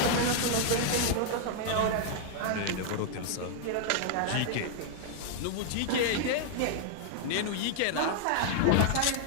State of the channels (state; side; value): different; both; correlation -0.01